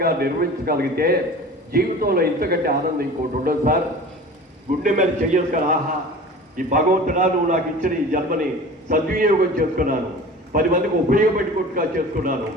నిర్వహించగలిగితే జీవితంలో ఇంతకంటే ఆనందం ఇంకోటి ఉండదు సార్. గుండె మీద చెయ్యేసుకొని ఆహా ఈ భగవంతుడా నువ్వు నాకు ఇచ్చిన ఈ జన్మని సద్వినియోగం చేసుకున్నాను, 10 మందికి ఉపయోగపెట్టుకుంటుగా చేసుకున్నాను,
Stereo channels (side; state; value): both; normal; correlation 0.39